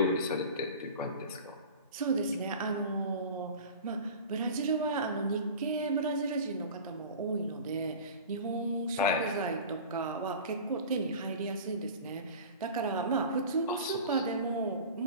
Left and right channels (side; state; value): both; inverted; correlation -0.36